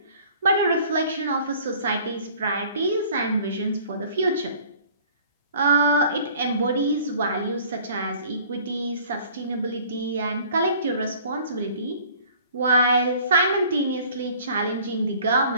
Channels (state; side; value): inverted; both; correlation -0.51